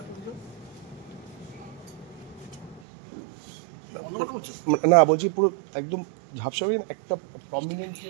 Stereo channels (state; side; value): drops out; left; at 2.8 s